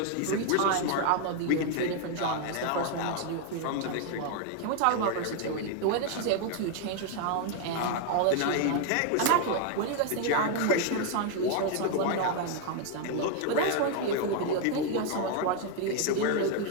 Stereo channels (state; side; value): different; both; correlation 0.00